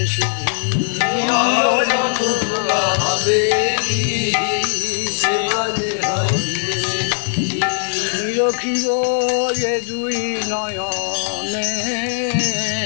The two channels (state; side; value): silent; right; 65 dB below the other